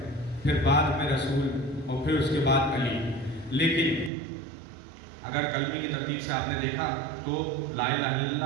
پھر بعد میں رسول اور پھر اس کے بعد علی، لیکن اگر کلمے کی ترتیب سے آپ نے دیکھا تو لا الہ الا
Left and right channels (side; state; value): left; drops out; at 4.1 s